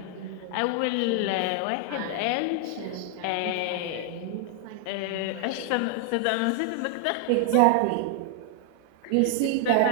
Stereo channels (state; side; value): different; both; correlation 0.00